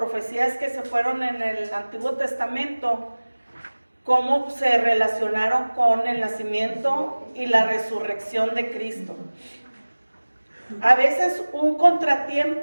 que se fueron en el Antiguo Testamento, cómo se relacionaron con el nacimiento y la resurrección de Cristo. A veces un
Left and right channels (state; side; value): inverted; both; correlation -1.00